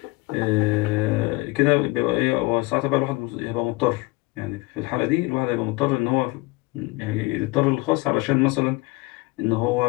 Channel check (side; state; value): right; quieter; 23.0 dB